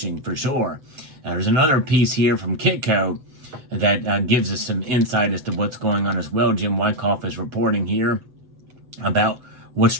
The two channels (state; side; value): late; left; 7.9 ms